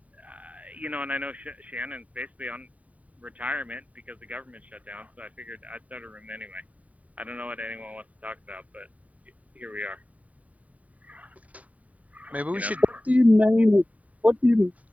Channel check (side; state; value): left; late; 0.070 ms